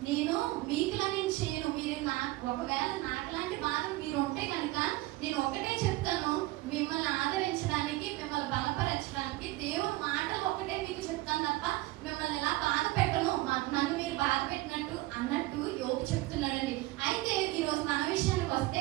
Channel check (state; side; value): quieter; left; 19.1 dB